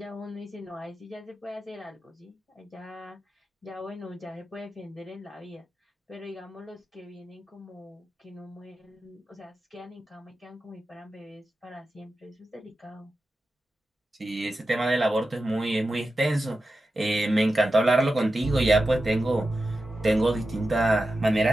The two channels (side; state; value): both; normal; correlation 0.92